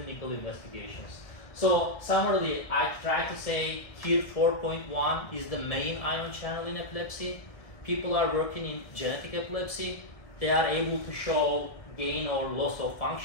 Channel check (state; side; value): late; right; 1.6 ms